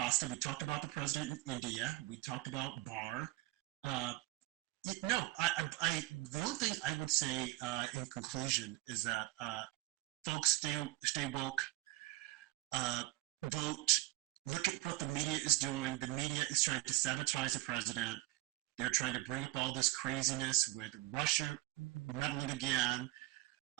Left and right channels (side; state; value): left; quieter; 18.8 dB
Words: We talked about the president of India. We talked about Barr. The only thing I would say in conclusion is that folks stay woke, vote, look at what the media is doing. The media is trying to sabotage the president. They're trying to bring up all this craziness with Russia meddling again.